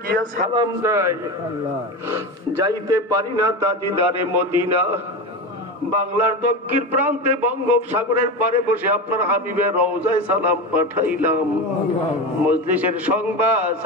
গিয়া সালাম দেয়, যাইতে পারি না তাজিদারে মদিনা। বাংলার দক্ষিণ প্রান্তে বঙ্গোপসাগরের পারে বসে আপনার হাবিবের রওজায় সালাম পাঠাইলাম। মজলিসের সংবাদ,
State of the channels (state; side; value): normal; both; correlation 0.22